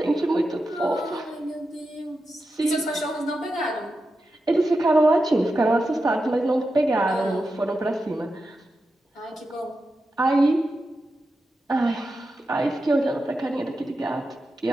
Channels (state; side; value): normal; both; correlation 0.90